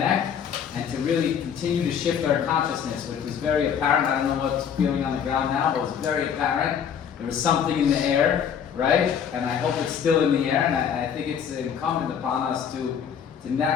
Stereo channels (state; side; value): quieter; right; 7.9 dB